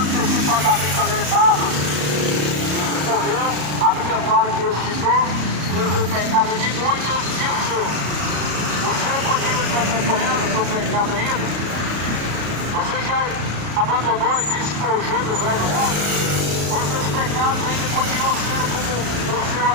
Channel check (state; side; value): late; left; 34 ms